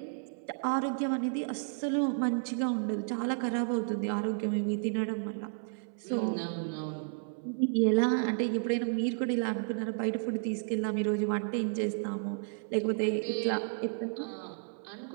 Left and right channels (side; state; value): left; silent; 56 dB below the other